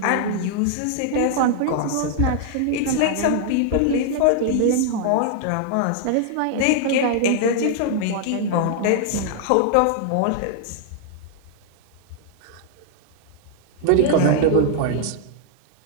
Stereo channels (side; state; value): both; different; correlation -0.01